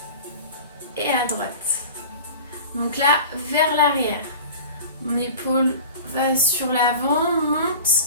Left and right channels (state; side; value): inverted; both; correlation -0.38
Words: et à droite. Donc là, vers l'arrière. Mon épaule va sur l'avant, monte